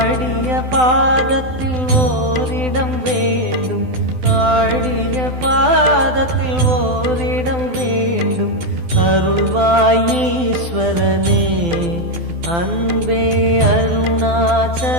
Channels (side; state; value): left; late; 12 ms